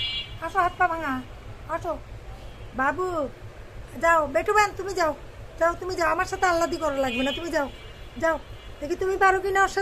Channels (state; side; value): identical; both; correlation 1.00